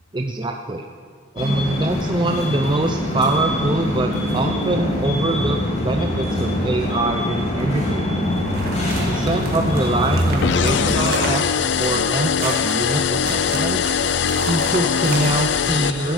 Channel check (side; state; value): both; normal; correlation 0.44